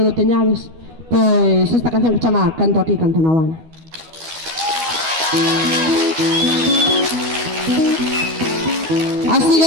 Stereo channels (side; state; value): left; late; 12 ms